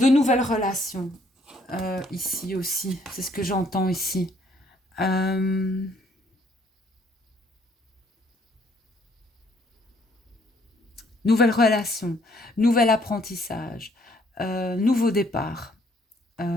nouvelles relations ici aussi. C'est ce que j'entends ici. Nouvelles relations, nouvel apprentissage, nouveau départ. Ouais.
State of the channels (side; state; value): both; normal; correlation 0.65